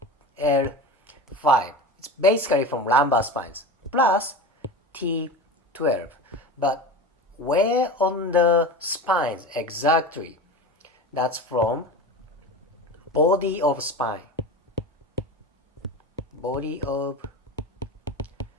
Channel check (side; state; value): both; normal; correlation 0.29